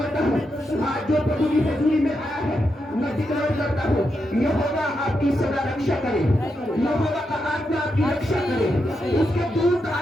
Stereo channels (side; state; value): both; normal; correlation 0.84